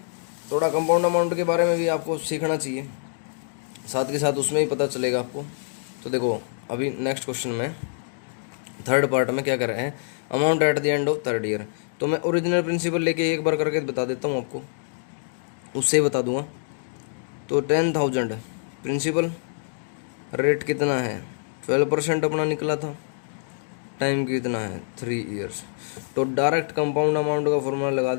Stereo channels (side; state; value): right; silent; digital silence